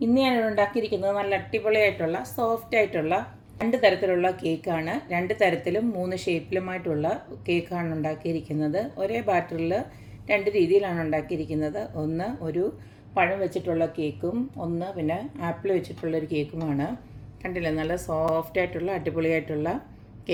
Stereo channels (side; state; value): both; identical; correlation 1.00